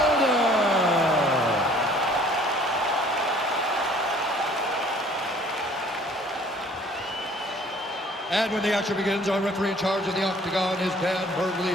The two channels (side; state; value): both; normal; correlation 0.54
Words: And when the action begins, our referee in charge of the octagon is Dan